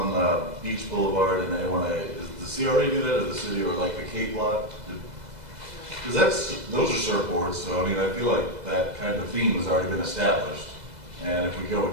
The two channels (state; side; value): late; left; 2.0 ms